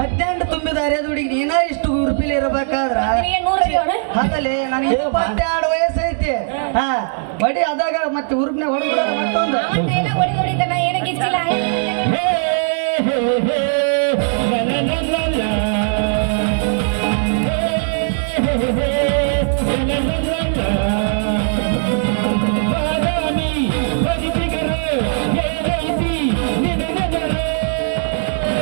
ತುಂಬಿದ ಅರೆದ ಹುಡುಗಿ ನೀನ ಇಷ್ಟು ಉರುಪಿಲಿ ಇರಬೇಕಾದ್ರ ಹಾಗಲೇ ನನಗೆ 22 ವಯಸ್ಸೈತಿ. ಹಾ ಬಡಿ ಅದಾಗ ಮತ್ತೆ ಉರುಪ್ನೆ ಹೊಡೆದ ಮತ್ತೊಂದು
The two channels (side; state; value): left; silent; 63 dB below the other